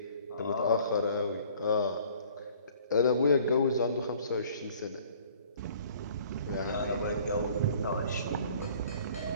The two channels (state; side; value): inverted; both; correlation -0.54